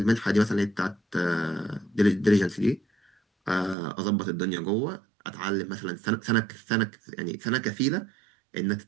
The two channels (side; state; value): left; drops out; at 3.8 s